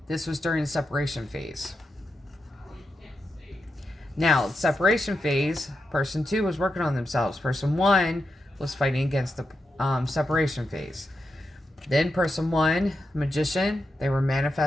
this was during the separation phase. Now, separation phase, person 2 was working on themselves. Person 1 was fighting against the separation phase. Then person 1, Magician, they were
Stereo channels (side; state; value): both; normal; correlation 0.87